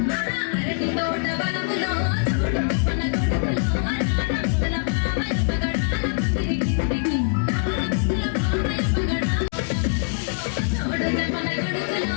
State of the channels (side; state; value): right; silent; 63 dB below the other